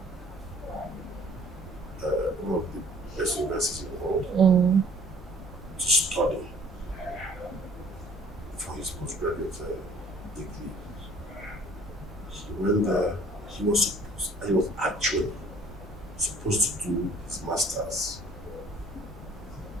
one of the best universities in the world, to study for his postgraduate degree. He went there. He was actually supposed to do his master's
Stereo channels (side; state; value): both; normal; correlation 0.54